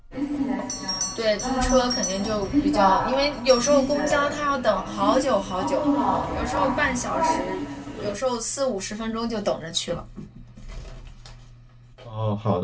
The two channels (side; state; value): both; identical; correlation 1.00